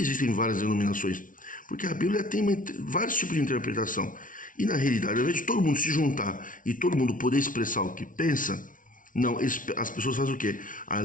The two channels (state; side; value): late; right; 0.38 ms